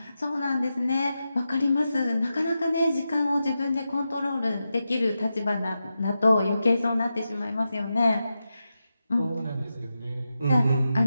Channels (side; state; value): both; inverted; correlation -0.90